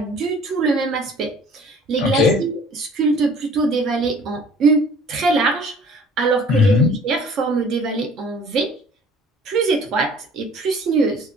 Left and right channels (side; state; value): both; normal; correlation 0.51